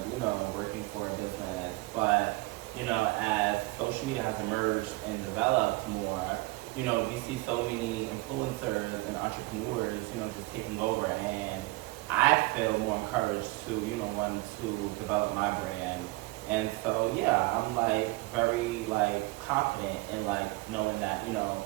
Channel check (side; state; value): left; quieter; 22.2 dB